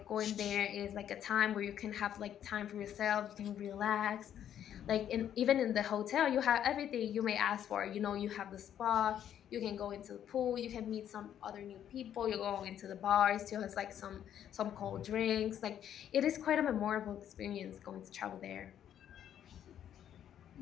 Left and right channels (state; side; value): quieter; right; 10.1 dB